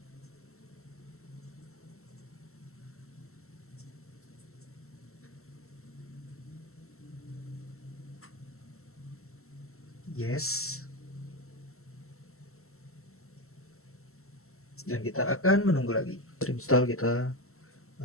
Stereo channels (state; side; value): late; right; 0.63 ms